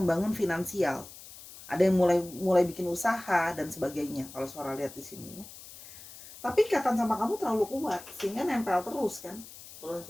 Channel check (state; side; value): noise; left; hiss, 17 dB below the sound